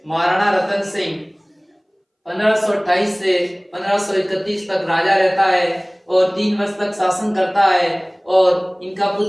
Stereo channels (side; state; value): both; identical; correlation 1.00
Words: महाराणा रतन सिंह 1528 से 1531 तक राजा रहता है और 3 वर्ष तक शासन करता है। और इनका